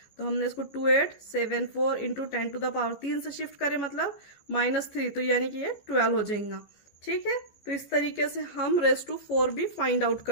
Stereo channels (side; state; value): right; late; 15 ms